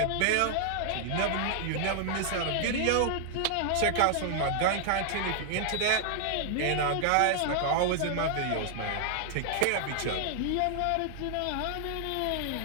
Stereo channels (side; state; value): both; different; correlation 0.00